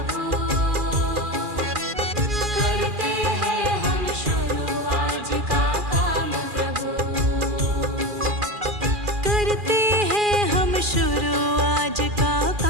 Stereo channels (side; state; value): left; late; 2.4 ms